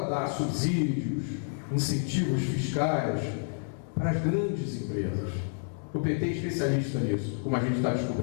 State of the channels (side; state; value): right; silent; digital silence